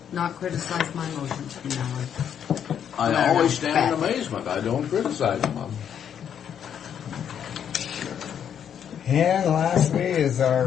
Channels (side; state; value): right; quieter; 8.7 dB